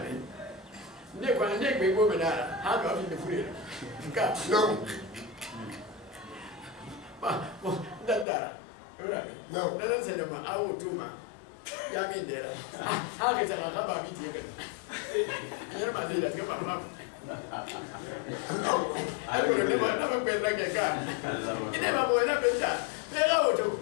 من نقول نك بيقول من هذا هذا في الفريق كا ما دندارا ولا من نحن سلما أو توما يا مين ديرا هذا كذا خبر بيتي كذا يا ما زيد كذا ما aku ni mana pun lagi kan? Ini apa boleh nak benda? Mereka tu,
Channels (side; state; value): right; drops out; at 8.2 s